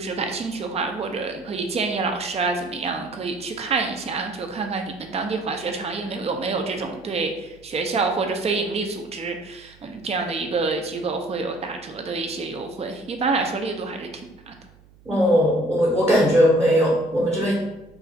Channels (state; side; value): noise; right; hum, 27 dB below the sound